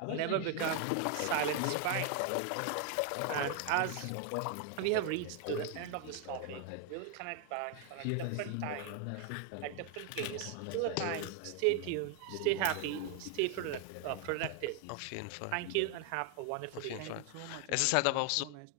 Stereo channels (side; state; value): both; different; correlation 0.00